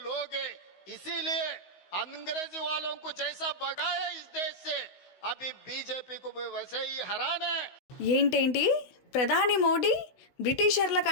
लोग हैं, इसीलिए अंग्रेजी वालों को जैसा भगाया इस देश से अभी बीजेपी को भी वैसे ही हराना है। ఏంటేంటి ప్రధాని మోడీ బ్రిటిషర్ల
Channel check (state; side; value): late; right; 16 ms